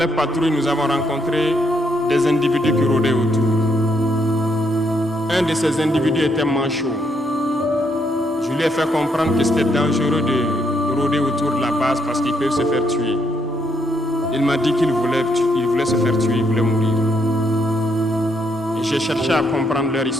patrouilles, nous avons rencontré des individus qui rôdaient autour. Un de ces individus était manchot. Je lui ai fait comprendre que c'était dangereux de rôder autour de la base parce qu'ils peuvent se faire tuer. Il m'a dit qu'il voulait se faire tuer, il voulait mourir. Et j'ai cherché à comprendre leur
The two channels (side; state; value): both; normal; correlation 0.75